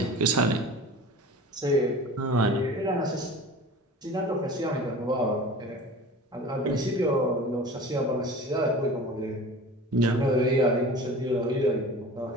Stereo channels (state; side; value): normal; both; correlation 0.38